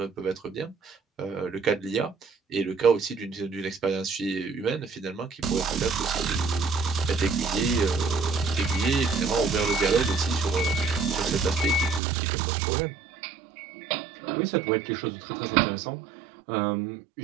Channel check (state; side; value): drops out; left; at 12.0 s